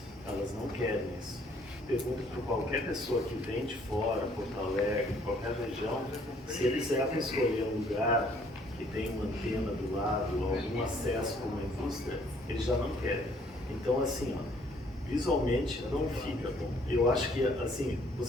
elas não querem isso. Pergunto para qualquer pessoa que vem de fora, Porto Alegre, qualquer região, se eles devem escolher um lugar que tem uma antena do lado, algum acesso com uma indústria, eles já não querem. Então, assim, ó, visualmente não fica bom. Eu acho que, assim,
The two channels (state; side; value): normal; both; correlation 0.62